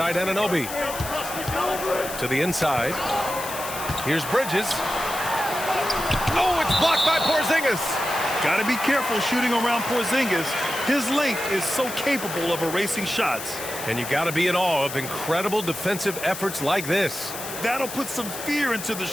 Anunoby. To the inside. Here's Bridges. Oh, it's blocked by Porzingis. Got to be careful shooting around Porzingis. His length is so capable of erasing shots. And you got to be in awe of incredible defensive efforts like this. That'll put some fear into the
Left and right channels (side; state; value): left; noise; hiss, 9 dB below the sound